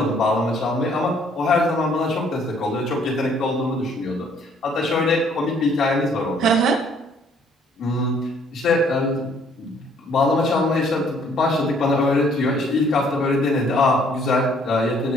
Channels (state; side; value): normal; both; correlation 0.62